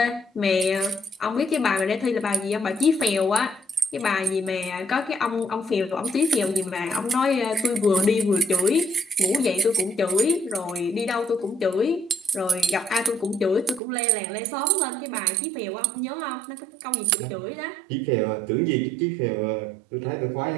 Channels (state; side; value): drops out; left; at 13.8 s